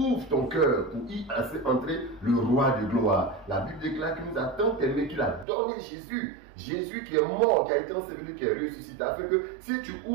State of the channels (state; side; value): drops out; left; at 5.5 s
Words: ton cœur pour y laisser entrer le roi de gloire. La Bible déclare qu'il nous a tant aimé qu'il a donné Jésus. Jésus qui est mort, qui a été enseveli, qui est ressuscité, afin que si tu